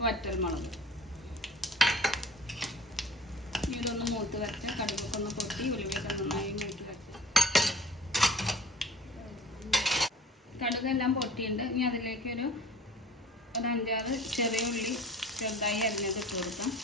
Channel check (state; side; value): normal; both; correlation 0.44